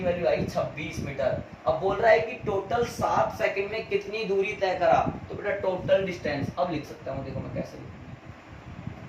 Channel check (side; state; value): both; identical; correlation 1.00